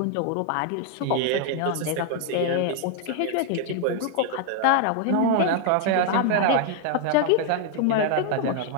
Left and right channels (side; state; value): both; different; correlation 0.00